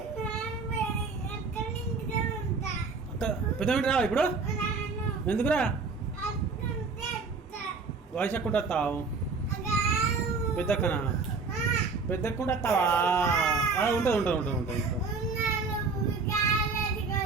పెద్ద ఇంటి రా ఇప్పుడు. ఎందుకురా వయసు ఎక్కుంటా వస్తావు? పెద్దక్కనా? పెద్దక్కుంటా వస్తావా? ఉంటుంది ఉంటుంది ఉంటుంది ఉంటుంది.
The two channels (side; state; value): left; quieter; 4.4 dB